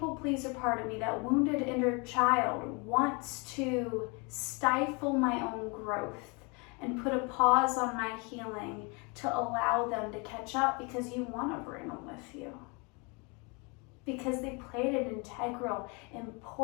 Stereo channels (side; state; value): right; quieter; 31.1 dB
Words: pleaser part of me, that wounded inner child, wants to stifle my own growth and put a pause on my healing to allow them to catch up, because you want to bring them with you. Because they played an integral,